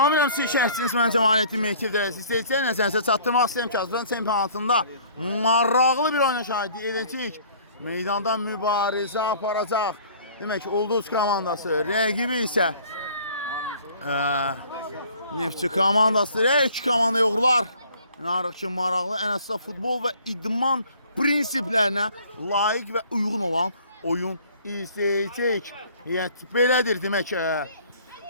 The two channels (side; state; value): both; inverted; correlation -0.53